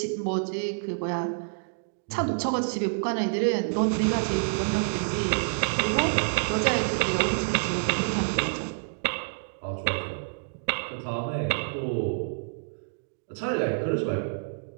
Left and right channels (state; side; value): silent; left; digital silence